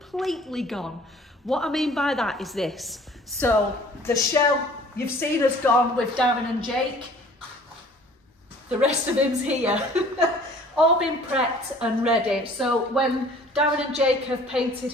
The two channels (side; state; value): both; normal; correlation 0.51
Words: gone. What I mean by that is this. So the shell you've seen has gone with Darren and Jake. The rest of him's here. All been prepped and ready. So when Darren and Jake have painted